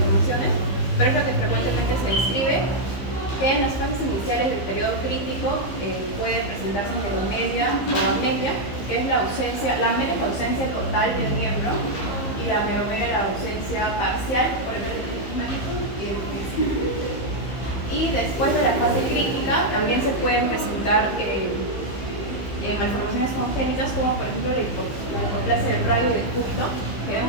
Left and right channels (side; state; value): right; late; 15 ms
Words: pero es lo que frecuentemente se describe, que en las fases iniciales del periodo crítico puede presentarse meromelia o amelia, que es la ausencia, la amelia es la ausencia total del miembro y la meromelia es la ausencia parcial, por ejemplo, y después de la fase crítica también se pueden presentar malformaciones congénitas como por ejemplo la hipoplasia del radio y del ducto, que